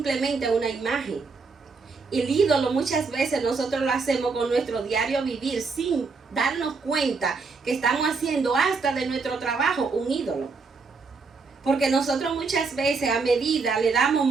una imagen. El ídolo muchas veces nosotros lo hacemos con nuestro diario vivir sin darnos cuenta que estamos haciendo hasta de nuestro trabajo un ídolo. Porque nosotros muchas veces a medida le damos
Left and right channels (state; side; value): quieter; left; 4.5 dB